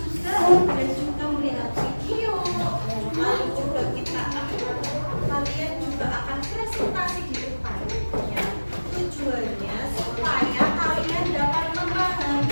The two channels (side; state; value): both; inverted; correlation -1.00